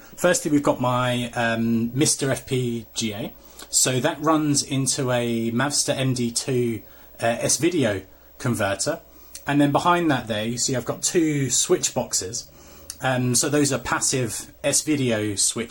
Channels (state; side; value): identical; both; correlation 1.00